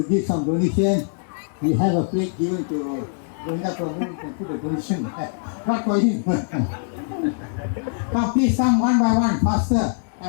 give some donation, we have a plate given to Govinda Prabhu. You can put a donation there. Not for him. Come, please come one by one, faster.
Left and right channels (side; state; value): right; silent; digital silence